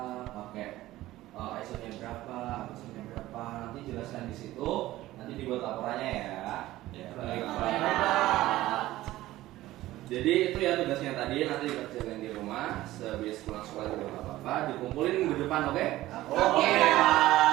pakai ISO-nya berapa, ISO-nya berapa, nanti jelaskan di situ, nanti dibuat laporannya ya. Ya. Jadi itu ya tugasnya tadi, nanti dikerjakan di rumah, sebelum pulang sekolah juga nggak apa-apa, dikumpulin minggu depan, oke? Oke.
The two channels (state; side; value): quieter; left; 16.1 dB